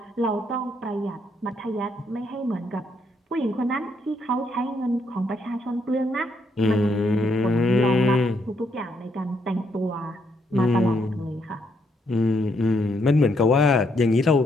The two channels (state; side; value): normal; both; correlation 0.74